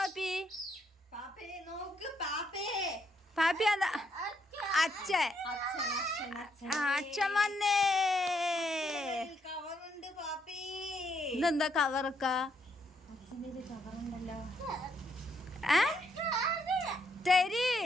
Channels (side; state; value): both; normal; correlation 0.74